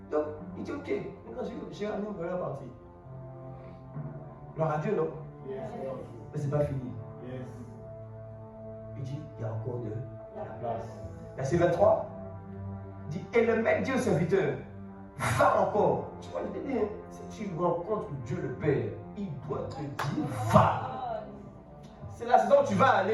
Donc, il dit: ok, maintenant j'ai ramené une première partie. Gloire à Dieu, non? Yes. Mais c'est pas fini. Yes. Il dit: il y a encore de La place. Verset 23 dit: et le maître dit au serviteur: va encore. Tu vois, je te dis, si tu rencontres Dieu le Père, il doit te dire: va. C'est la saison où tu vas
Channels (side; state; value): both; identical; correlation 1.00